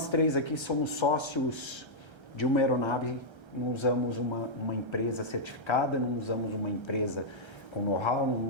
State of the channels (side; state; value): right; late; 1.3 ms